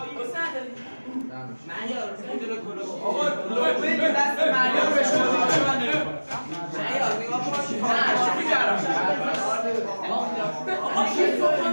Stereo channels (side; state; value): both; inverted; correlation -1.00